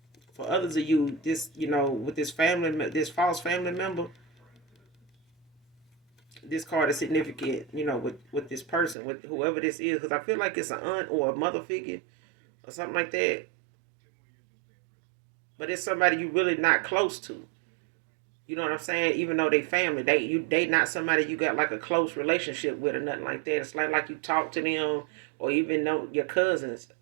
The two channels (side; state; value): left; drops out; at 9.0 s